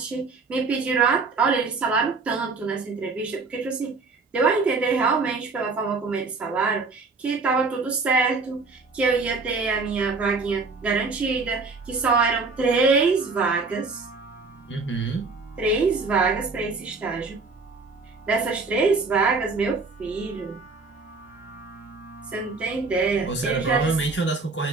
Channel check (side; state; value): left; quieter; 4.1 dB